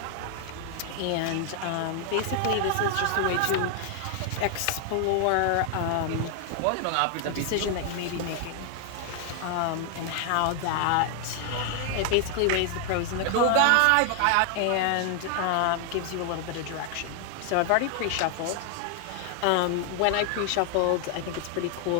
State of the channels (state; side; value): different; both; correlation 0.00